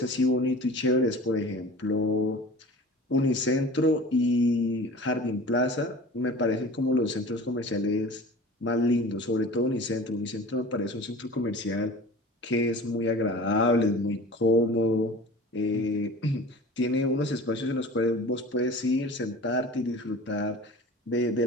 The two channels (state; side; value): normal; both; correlation 0.39